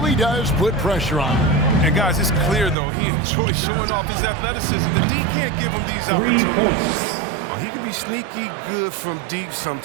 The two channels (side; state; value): left; drops out; at 2.8 s